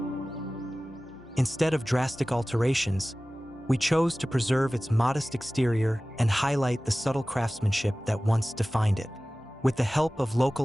Instead of drastic alterations, we chose to preserve its modest exterior and highlight the subtle craftsmanship that once defined it. With the help of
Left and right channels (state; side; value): normal; both; correlation 0.97